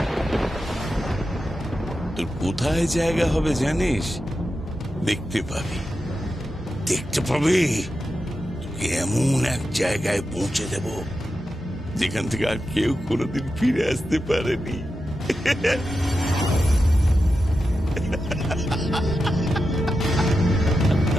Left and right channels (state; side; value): normal; both; correlation 0.90